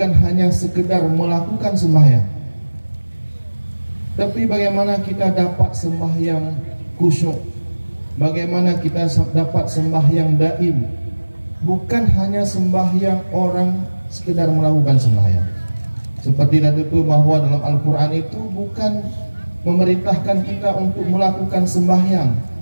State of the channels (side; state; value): both; inverted; correlation -1.00